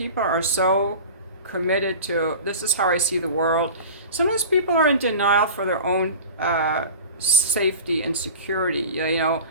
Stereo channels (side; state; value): both; inverted; correlation -0.36